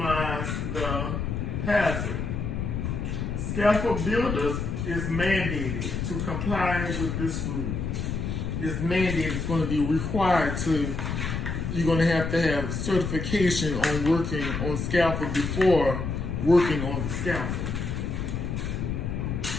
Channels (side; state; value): left; noise; rumble, 3 dB below the sound